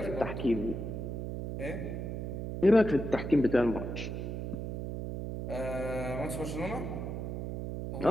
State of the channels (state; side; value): noise; right; hum, 4 dB below the sound